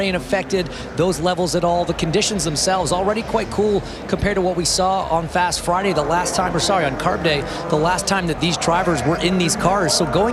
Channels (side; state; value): both; identical; correlation 1.00